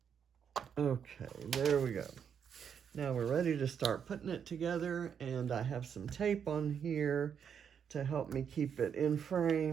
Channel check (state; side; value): quieter; left; 7.6 dB